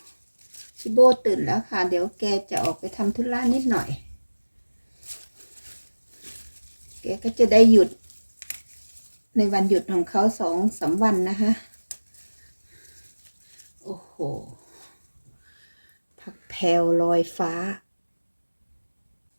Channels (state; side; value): inverted; both; correlation -1.00